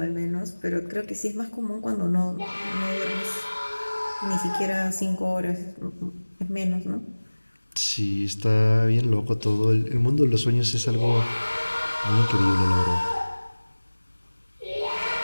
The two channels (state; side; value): inverted; both; correlation -1.00